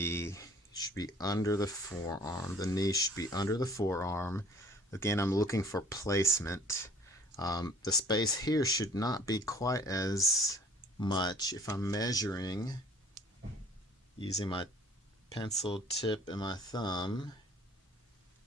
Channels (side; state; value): both; normal; correlation 0.52